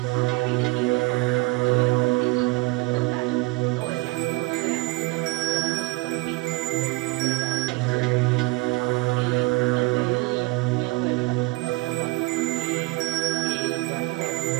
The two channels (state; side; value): quieter; left; 23.3 dB